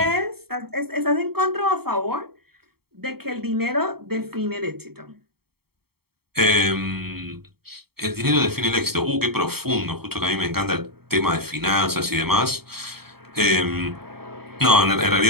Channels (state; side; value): late; left; 0.95 ms